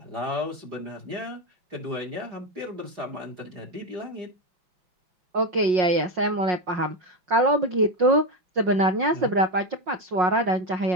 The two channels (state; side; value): late; left; 5.5 ms